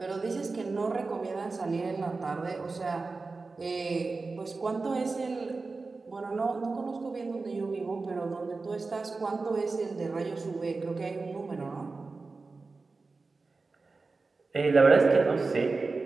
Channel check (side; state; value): left; quieter; 3.9 dB